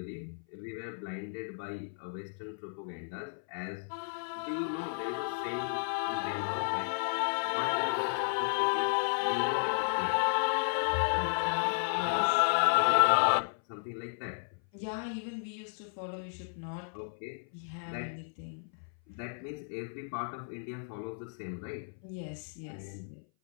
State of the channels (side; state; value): right; silent; 55 dB below the other